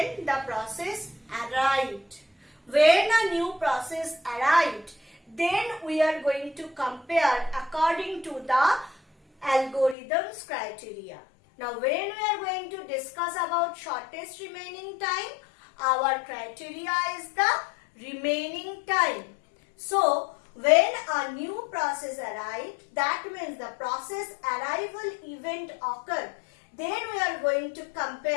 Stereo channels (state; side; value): drops out; right; at 10.0 s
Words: the process arrived. When a new process arrived, then we are going to compare according to the algorithm's criteria. Now when we are going to discuss about shortest remaining time, our criteria is the remaining time. So when a new process arrived, that means the process arrival event occurred. Then we are going to